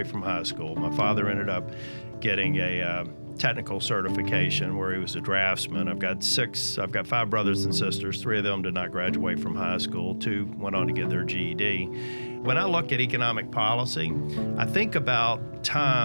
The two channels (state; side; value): inverted; both; correlation -1.00